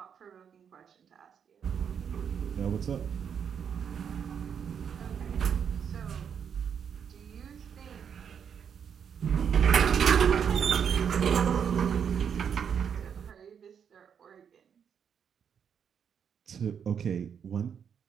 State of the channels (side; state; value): left; quieter; 7.6 dB